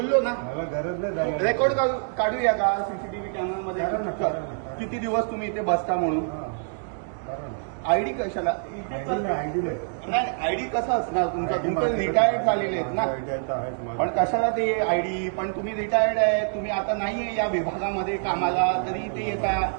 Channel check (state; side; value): silent; left; 61 dB below the other